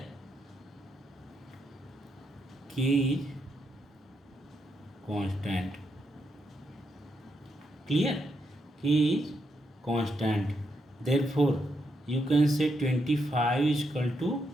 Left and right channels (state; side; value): normal; both; correlation 0.80